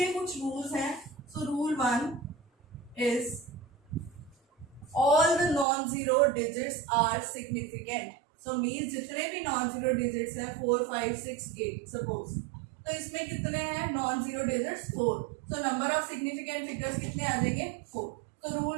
कुछ रूल्स हैं. So rule 1 is all the non zero digits are significant. So means जितने भी नॉन जीरो डिजिट्स हैं 4, 5, 6, 8 सपोज, तो इसमें कितने हैं non zero digits? 4. So number of significant figures कितने आ जाएंगे? 4. So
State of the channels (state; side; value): drops out; left; at 5.7 s